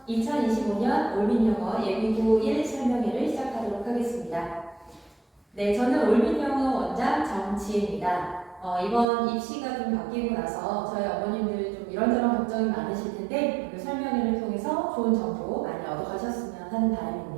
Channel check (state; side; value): drops out; left; at 9.1 s